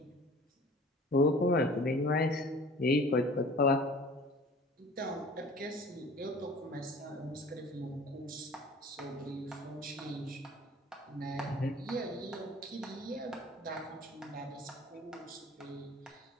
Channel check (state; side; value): normal; both; correlation 0.46